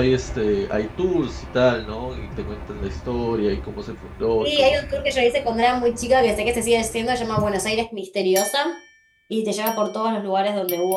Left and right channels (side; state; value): both; identical; correlation 1.00